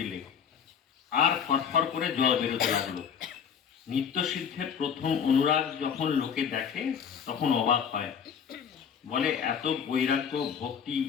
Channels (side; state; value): right; quieter; 7.4 dB